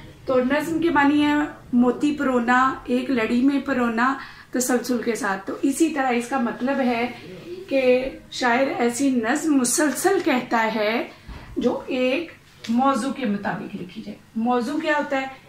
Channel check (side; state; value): both; identical; correlation 1.00